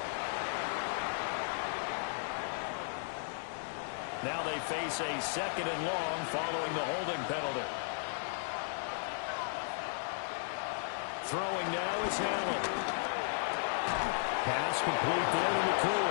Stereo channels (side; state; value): right; silent; digital silence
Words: Now they face a 2nd and long following the holding penalty. Throwing now is Allen. Pass complete there to